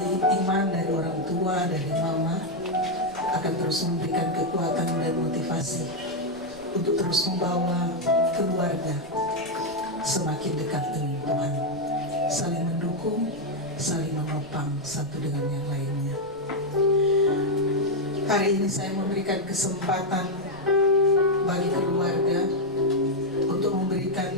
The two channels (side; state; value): right; noise; rumble, 24 dB below the sound